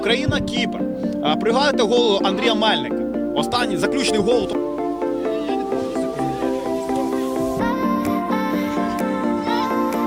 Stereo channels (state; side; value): identical; both; correlation 1.00